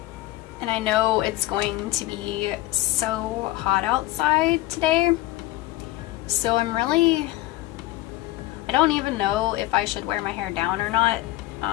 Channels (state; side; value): quieter; right; 17.7 dB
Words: And I know it's going to be so hot outside today, so I don't even know if I should wear my hair down or not,